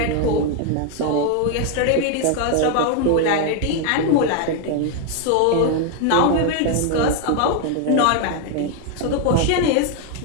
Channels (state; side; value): different; both; correlation 0.01